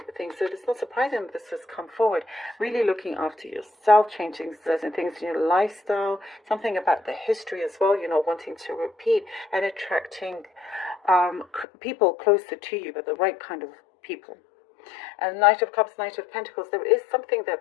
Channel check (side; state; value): right; drops out; at 11.7 s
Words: things. So it's not surprising that this has come forward. Really looking after yourself, changing certain things in your lifestyle, something about the history as well, wanting to repeat and attracting people closer to you, but the right kind of people. And Knight of Cups, Knight of Pentacles, there is something